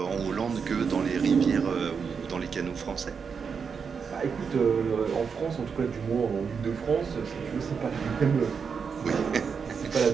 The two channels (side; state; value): left; quieter; 6.0 dB